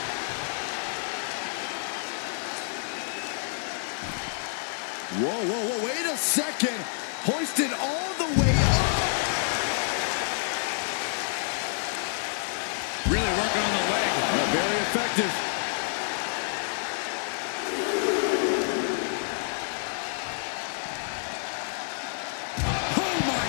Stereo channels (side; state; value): right; silent; digital silence